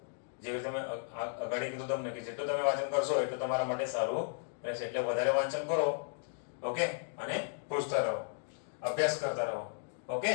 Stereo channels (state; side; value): silent; right; digital silence